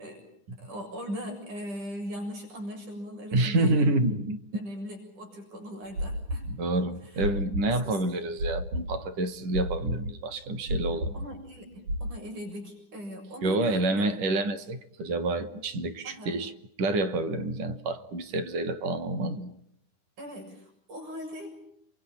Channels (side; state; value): left; late; 9.9 ms